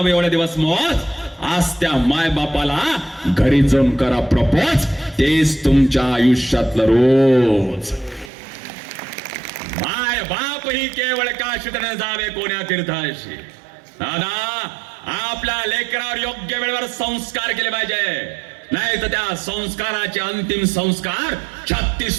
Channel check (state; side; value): drops out; left; at 8.3 s